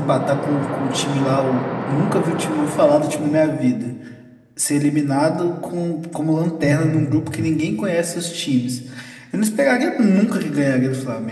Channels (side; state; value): both; identical; correlation 1.00